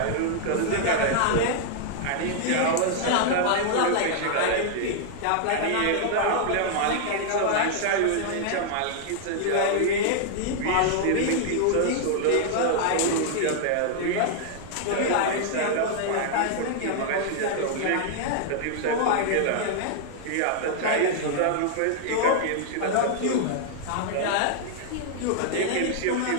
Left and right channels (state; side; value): different; both; correlation -0.01